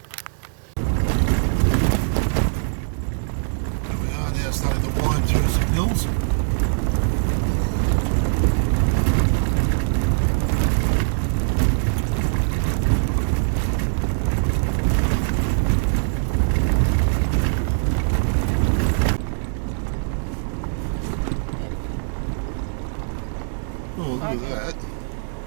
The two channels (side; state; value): left; silent; digital silence